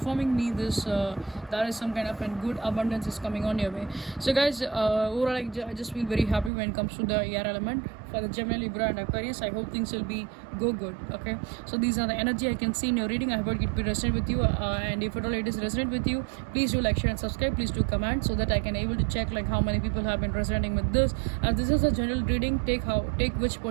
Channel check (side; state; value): left; drops out; at 6.5 s